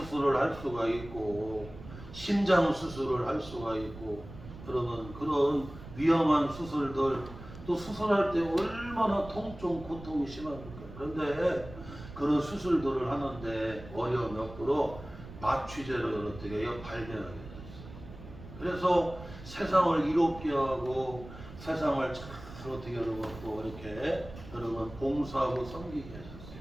할 수가 있고 심장 수술을 할 수가 있고 여러분 그런 위험한 수술들 또 수술할 때 얼마나 통증 고통이 심합니까? 그런데 그런 수술들을 하는데 어려움이 없도록 마취제를 어떻게 해요? 발견하게 됐어요. 그래서 세상을 이롭게 하고 세상을 잘 어떻게 여러분 또 이렇게 여러분 봉사하고 섬기게 하셨어요.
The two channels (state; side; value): noise; right; rumble, 15 dB below the sound